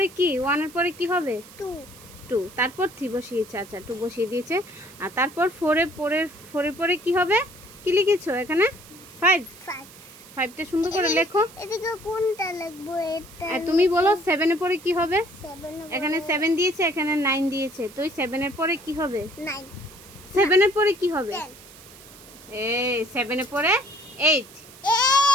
কি? 1 এর পরে কি হবে? 2। তারপর 3 বসিয়েছে। আচ্ছা 2 বসিয়ে দিয়েছে। আর তারপর 4 এর পরে কি হবে? কি লিখেছো এখানে? 5। 5টা সুন্দর করে লেখো। এদিকে কোনটা লিখবো? এটা তুমি বলো 7 এর পরে কি হবে? এখানে 7 দিয়েছে, এখানে 9 দিয়েছে। তো 7 এর পরে কি হবে? 9। 7 এর পরে কি হবে? এই 7 এর পরে 8।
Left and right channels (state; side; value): noise; right; hiss, 20 dB below the sound